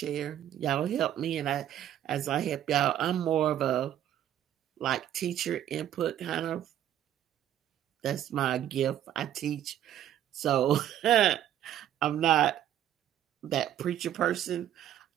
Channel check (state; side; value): quieter; left; 11.3 dB